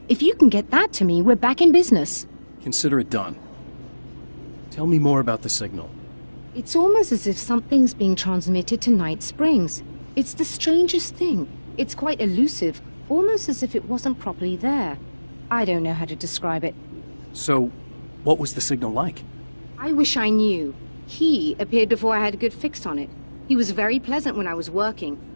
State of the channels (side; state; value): both; inverted; correlation -1.00